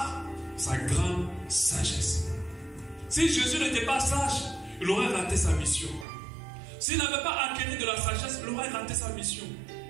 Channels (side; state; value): left; drops out; at 6.1 s